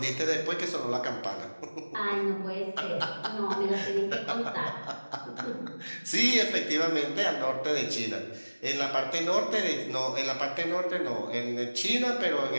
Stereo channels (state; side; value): inverted; both; correlation -1.00